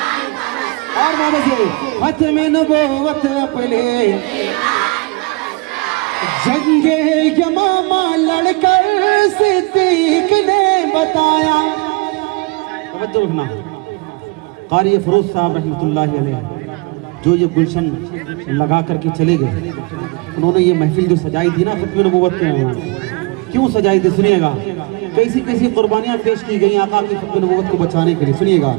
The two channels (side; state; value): left; quieter; 26.7 dB